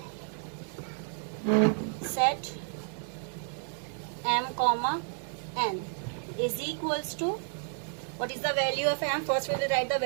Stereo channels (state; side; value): silent; left; 57 dB below the other